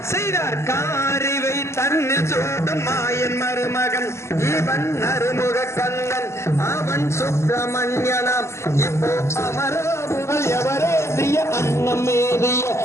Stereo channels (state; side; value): late; right; 0.13 ms